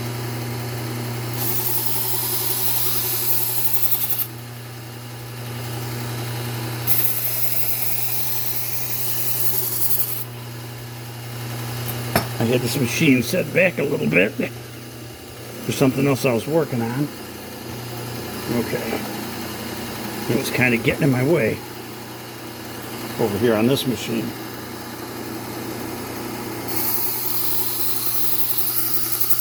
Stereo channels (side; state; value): both; identical; correlation 1.00